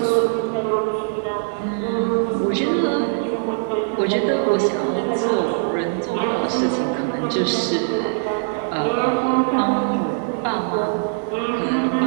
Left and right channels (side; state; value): left; silent; digital silence